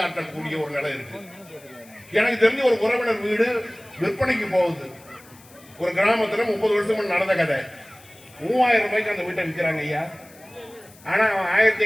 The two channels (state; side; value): noise; left; hiss, 25 dB below the sound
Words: ஒரு நிலை இருக்கு. எனக்கு தெரிஞ்ச ஒரு உறவினர் வீடு விற்பனைக்கு போகுது. ஒரு கிராமத்துல 30 வருஷம் நடந்த கதை. 3000 ரூபாய்க்கு அந்த வீட்டை விற்கிறாங்க ஐயா. ஆனா அவன்